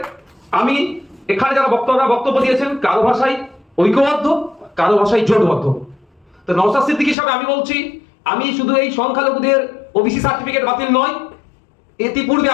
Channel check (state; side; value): drops out; right; at 7.2 s